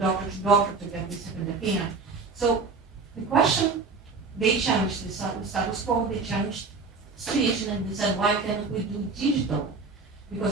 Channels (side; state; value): left; quieter; 4.3 dB